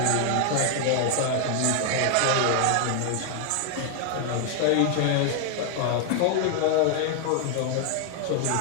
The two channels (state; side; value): different; both; correlation 0.00